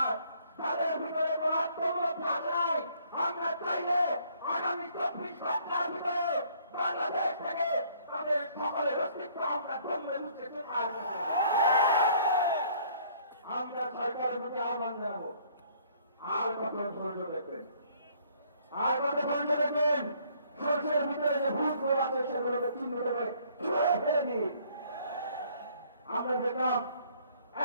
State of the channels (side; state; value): both; inverted; correlation -0.61